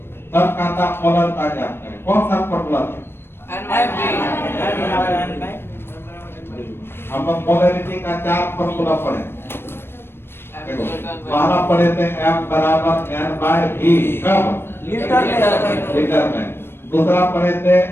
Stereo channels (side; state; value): right; late; 0.11 ms